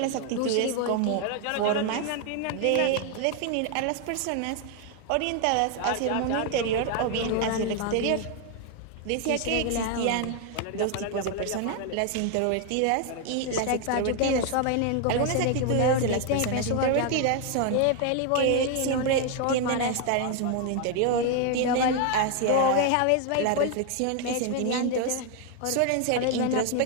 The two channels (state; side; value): different; both; correlation 0.01